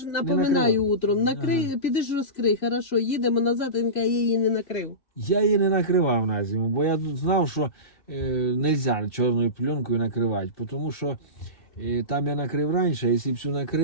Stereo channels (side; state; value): right; late; 2.7 ms